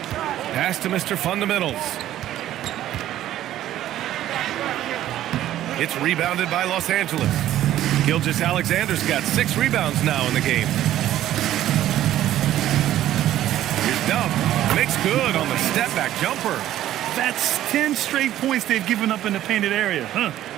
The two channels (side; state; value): left; quieter; 12.9 dB